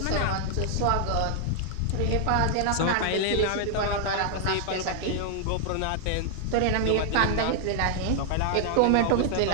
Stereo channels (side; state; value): both; different; correlation -0.01